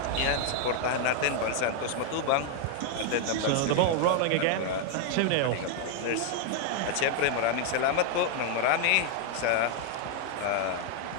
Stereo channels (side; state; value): both; different; correlation 0.00